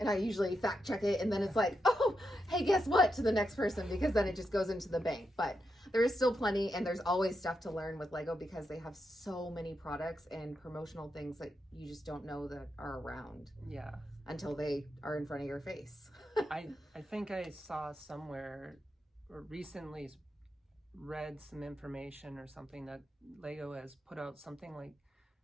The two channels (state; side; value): normal; both; correlation 0.85